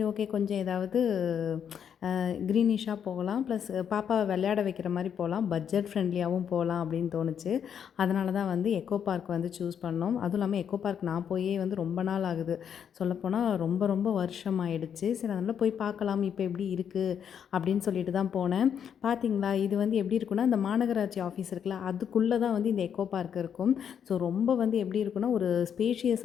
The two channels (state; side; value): quieter; right; 8.2 dB